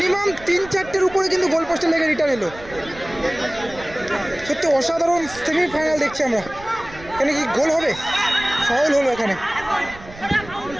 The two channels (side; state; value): right; noise; rumble, 18 dB below the sound